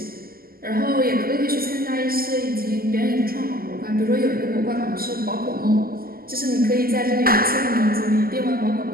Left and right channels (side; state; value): left; late; 0.43 ms